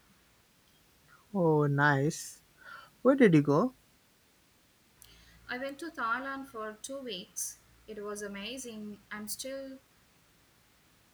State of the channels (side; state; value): both; identical; correlation 1.00